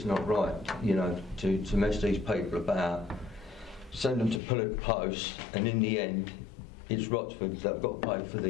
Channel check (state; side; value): drops out; right; at 4.4 s